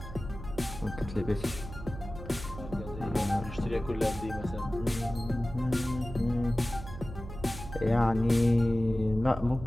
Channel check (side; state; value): right; noise; hum, 11 dB below the sound